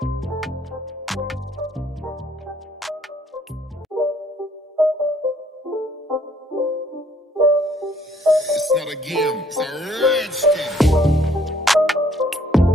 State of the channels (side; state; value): both; normal; correlation 0.63